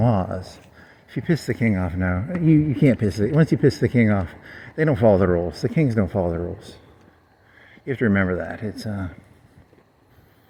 laws. If you piss the king off, no. You can't piss it. Once you piss the king off, they don't follow the rules. The kings don't follow the rules. You have to remember that. It's,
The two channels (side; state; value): both; identical; correlation 1.00